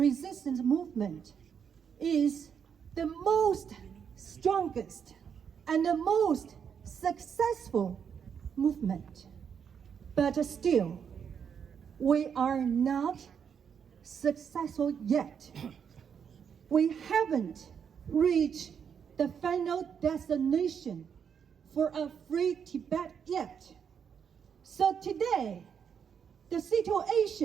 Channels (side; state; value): left; quieter; 7.4 dB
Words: movement is the most strongest and the most successful movement. But still, we are not successful yet. We haven't reached the final destination for a free Tibet yet. So today, the